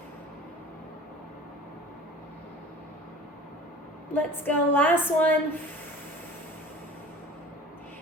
Let's go, last one.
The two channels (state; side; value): normal; both; correlation 0.41